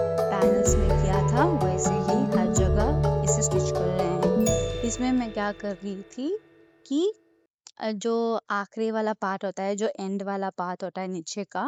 पैनल्स में किया था वैसे ही हर जगह इसे स्टिच कर रहे हैं। इसमें मैं क्या कर रही थी कि जो आखिरी वाला पार्ट होता है, जो एंड वाला पार्ट होता है नीचे का,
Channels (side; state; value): both; identical; correlation 1.00